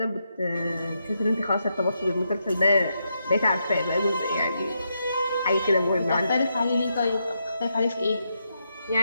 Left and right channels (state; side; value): inverted; both; correlation -0.82